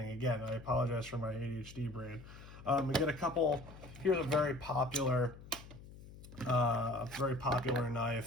Again, I apologize for my ADHD brain. We get a couple. Here's a very popular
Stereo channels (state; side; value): noise; left; hum, 17 dB below the sound